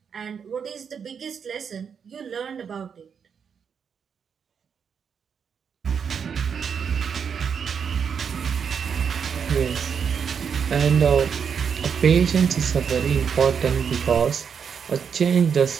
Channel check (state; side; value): quieter; left; 6.9 dB